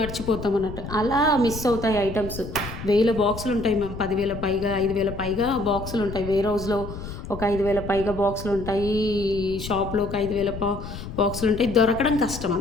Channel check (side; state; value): left; noise; rumble, 10 dB below the sound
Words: అన్నట్టు, అలా మిస్ అవుతాయి ఐటమ్స్. 1000 బాక్సులు ఉంటాయి మ్యామ్, 10,000 పైగా 5,000 పైగా బాక్సులు ఉంటాయి. వేర్ హౌస్లో ఒక 5,000 పైగా బాక్సులు ఉంటాయి, షాప్లో ఒక 5,000 బాక్సులు ఉంటాయి, దొరకడం కష్టం